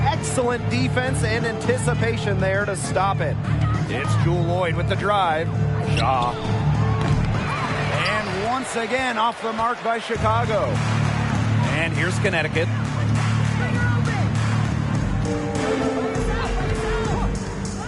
excellent defense and anticipation there to stop it. It's Jewel Lloyd with the drive. Shaw. And once again off the mark by Chicago. And here's Connecticut.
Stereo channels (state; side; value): identical; both; correlation 1.00